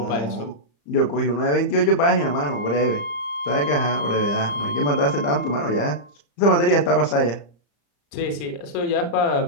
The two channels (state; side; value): late; right; 35 ms